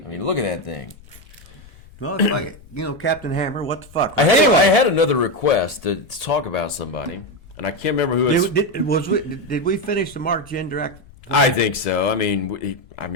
mean, look at that thing. Well, it's like, Captain Hammer, what the fuck? I Anyway, had another request to talk about somebody, and I can't remember who it's. did we finish the Mark Jindrak? I think so. I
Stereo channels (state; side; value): noise; left; rumble, 23 dB below the sound